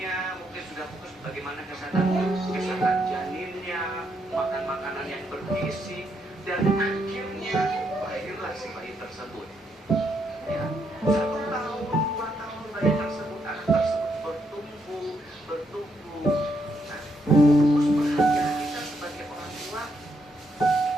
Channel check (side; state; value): both; normal; correlation 0.77